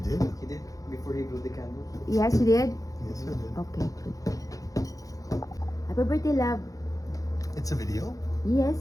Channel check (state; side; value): late; right; 0.17 ms